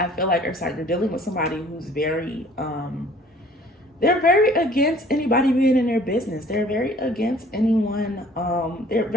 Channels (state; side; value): normal; both; correlation 0.54